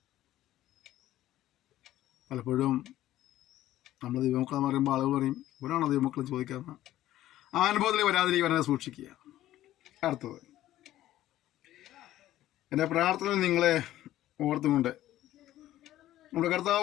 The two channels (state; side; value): quieter; right; 14.0 dB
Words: പലപ്പോഴും നമ്മൾ ദൈവമക്കളെന്ന് പറയുമ്പോൾ ആളുകൾ പറയും, ഇവരാണോ ദൈവമക്കളെന്ന് ചോദിക്കാമെന്ന്. ആ അനുഭവത്തിൽ വരാതിരിക്കാനെ സൂക്ഷിക്കുക. അടുത്തത്, എൻ്റെ പ്രാർത്ഥനയിൽ നിങ്ങളെ ഓർത്തുകൊണ്ട് നമ്മുടെ